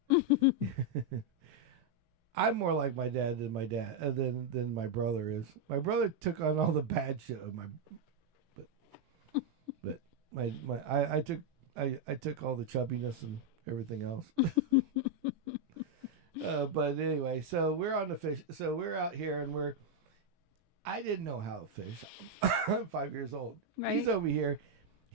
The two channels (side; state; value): left; late; 18 ms